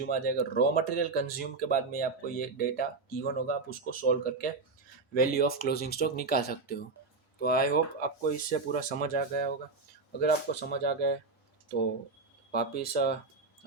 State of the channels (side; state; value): left; quieter; 4.0 dB